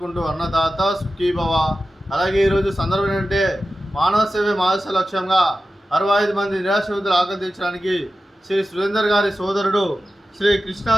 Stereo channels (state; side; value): normal; both; correlation 0.93